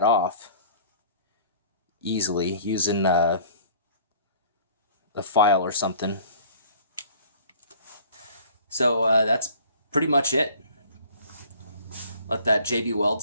off easily using a file or something. So that's pretty much it. Let that JB Weld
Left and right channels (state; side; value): inverted; both; correlation -0.51